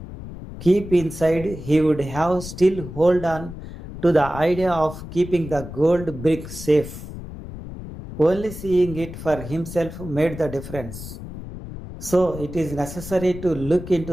Keep inside, he would have still hold on to the idea of keeping the gold brick safe. Only seeing it for himself made the difference. So it is necessary to look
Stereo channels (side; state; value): left; noise; rumble, 11 dB below the sound